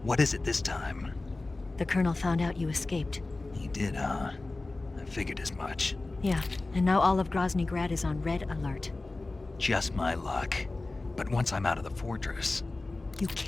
What is it this time? The Colonel found out you escaped. He did, huh? I figured as much. Yeah, and now all of Grozny Grad is on red alert. Just my luck. But once I'm out of the fortress... You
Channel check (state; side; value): quieter; right; 3.2 dB